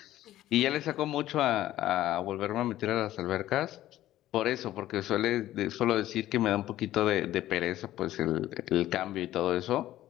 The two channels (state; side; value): quieter; right; 14.1 dB